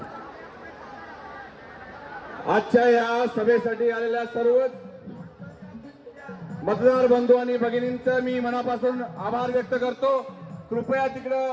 आजच्या या सभेसाठी आलेल्या सर्वच मतदार बंधू आणि भगिनींचं मी मनापासून आभार व्यक्त करतो। कृपया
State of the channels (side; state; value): both; identical; correlation 1.00